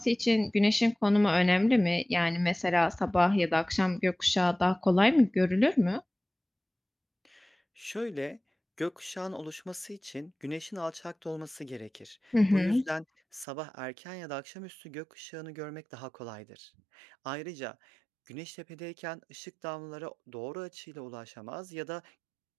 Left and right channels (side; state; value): left; drops out; at 13.5 s